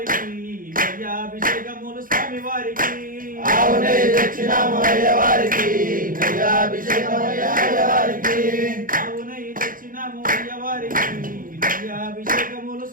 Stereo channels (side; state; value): left; late; 0.40 ms